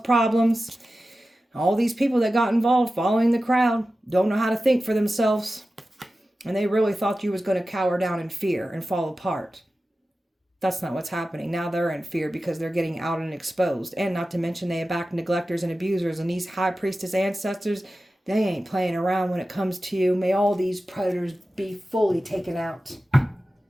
problems. All these people that got involved following the crowd don't know how to think for themselves. And they really thought you was going to cower down in fear and fall apart. That's not what's happening. Now they're in fear because they're getting out and exposed. And not to mention they back neglectors and abusers. And these high priestess ancestors, they ain't playing around when it comes to you. May all these predators be fully taken out.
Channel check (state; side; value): normal; both; correlation 0.94